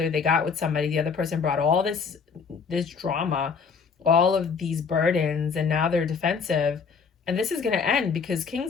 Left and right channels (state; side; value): quieter; right; 5.7 dB